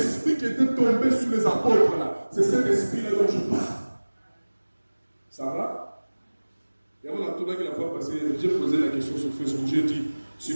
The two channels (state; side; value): inverted; both; correlation -1.00